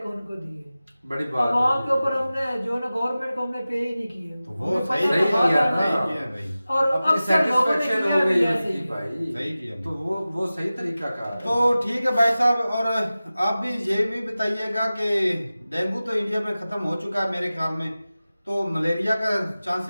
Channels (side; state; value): both; inverted; correlation -0.96